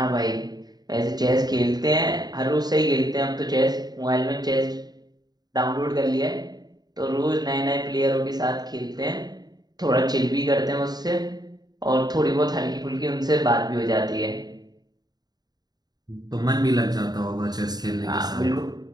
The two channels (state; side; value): late; left; 0.19 ms